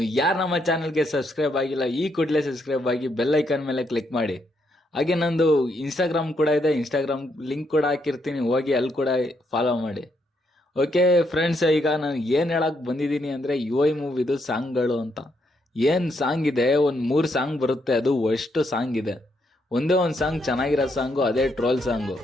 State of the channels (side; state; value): both; normal; correlation 0.76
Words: ಯಾರು ನಮ್ಮ ಚಾನಲ್ಗೆ ಸಬ್ಸ್ಕ್ರೈಬ್ ಆಗಿಲ್ಲ, ಈ ಕೂಡಲೇ ಸಬ್ಸ್ಕ್ರೈಬ್ ಆಗಿ ಬೆಲ್ ಐಕಾನ್ ಮೇಲೆ ಕ್ಲಿಕ್ ಮಾಡಿ. ಹಾಗೆ ನಂದು ಇನ್ಸ್ಟಾಗ್ರಾಮ್ ಕೂಡ ಇದೆ, ಇನ್ಸ್ಟಾಗ್ರಾಮ್ ಲಿಂಕ್ ಕೂಡ ಹಾಕಿರ್ತೀನಿ, ಹೋಗಿ ಅಲ್ಲಿ ಕೂಡ ಫಾಲೋ ಮಾಡಿ. ಓಕೆ ಫ್ರೆಂಡ್ಸ್, ಈಗ ನಾನು ಏನು ಹೇಳಕ್ ಬಂದಿದ್ದೀನಿ ಅಂದರೆ UI ಮೂವಿದು ಸಾಂಗ್ಗಳು ಅಂತ. ಏನು ಸಾಂಗ್ ಇದೆ, ಒಂದು 3 ಸಾಂಗ್ ಬರುತ್ತೆ, ಅದು ಅಷ್ಟು ಸಾಂಗ್ ಇದೆ. ಒಂದೇ ಒಂದು ಸಾಂಗ್ ಚೆನ್ನಾಗಿರೋ ಸಾಂಗು, ಅದೇ ಟ್ರೋಲ್ ಸಾಂಗು.